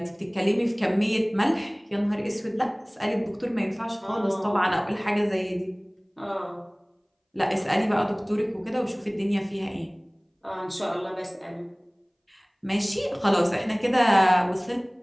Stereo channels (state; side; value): identical; both; correlation 1.00